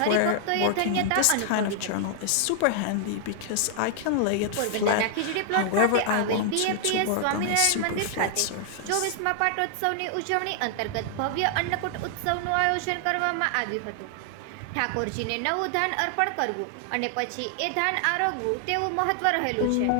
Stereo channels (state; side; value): different; both; correlation 0.00